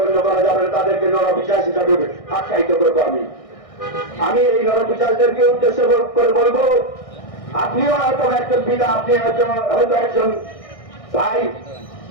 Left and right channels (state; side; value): late; right; 1.6 ms